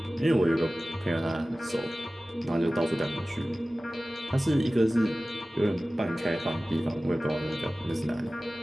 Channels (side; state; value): both; normal; correlation 0.97